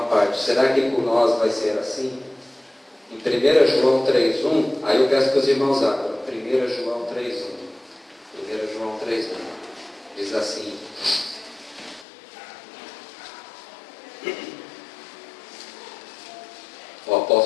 Será que por nós vai ser assim? Em 1 João 3,1, aí eu peço que os irmãos abram. 1 João 3,1. 1 João 3,1 diz assim: o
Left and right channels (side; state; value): right; drops out; at 12.1 s